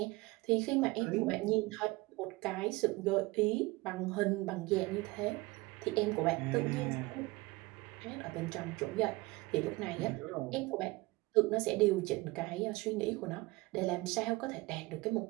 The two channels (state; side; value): quieter; left; 22.5 dB